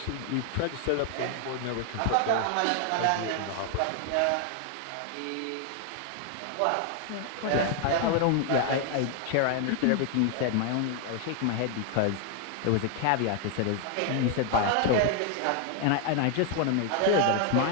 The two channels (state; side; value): different; both; correlation 0.00